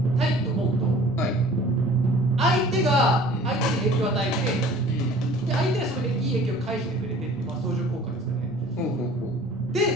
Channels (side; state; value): both; normal; correlation 0.48